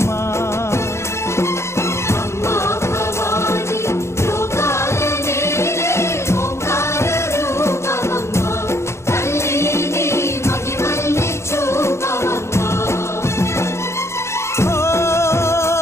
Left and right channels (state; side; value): late; right; 0.13 ms